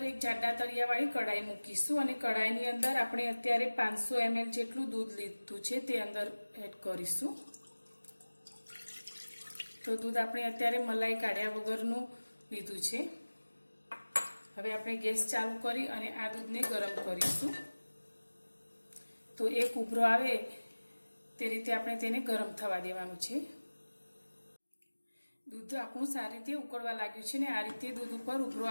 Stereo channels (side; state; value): both; inverted; correlation -1.00